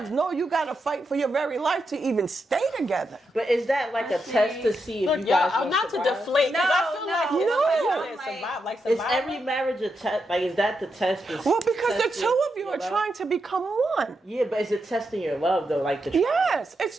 no, you got to fight for your very life to even stay together. But is that a test to see if you guys I'm not to survive? deflate. No, I feel no. survive. Is every marriage a test? Is that the test? Well, because the two of you are trying to become one. Yeah, but is it testing your love though? Yes, it's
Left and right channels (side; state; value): both; normal; correlation 0.84